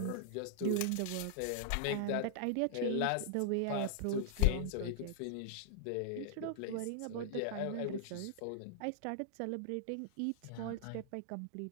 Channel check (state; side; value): different; both; correlation -0.01